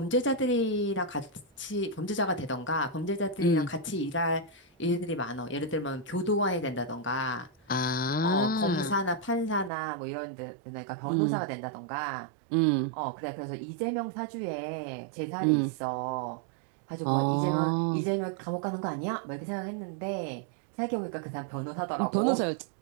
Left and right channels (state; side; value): drops out; left; at 9.7 s